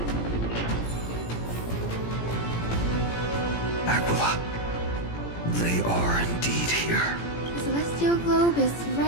Aquila, they are indeed here. The celestial globe is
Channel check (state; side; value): late; right; 17 ms